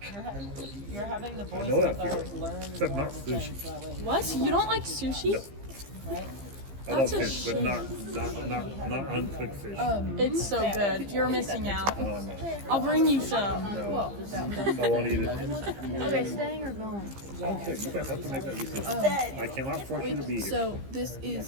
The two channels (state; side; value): late; left; 15 ms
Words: you're having the I boys know that to feeling. learn Except more not things sushi. that way, What? You don't like sushi? right? I love That's a fish, but shame. not uncooked fish. It's so good. You're missing out. No, no, I'll bring you some. no. I won't eat it. Okay, staying or going? Okay, you guys have to make that decision. I cannot force you to be here. So this